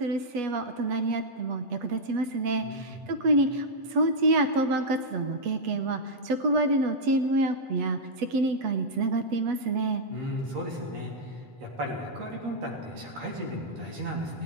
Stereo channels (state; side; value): late; left; 8.2 ms